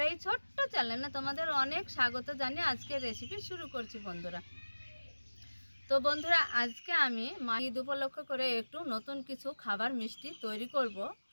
এই ছোট্ট চ্যানেলে তোমাদের অনেক স্বাগত জানিয়ে আজকে রেসিপি শুরু করছি বন্ধুরা। তো বন্ধুরা, আজকে আমি ঈদ উপলক্ষ করে একটু নতুন কিছু খাবার মিষ্টি তৈরি করব।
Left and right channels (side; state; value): both; inverted; correlation -1.00